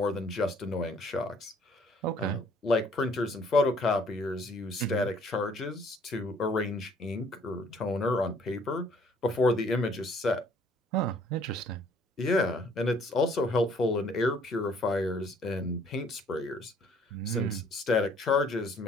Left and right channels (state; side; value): normal; both; correlation 0.60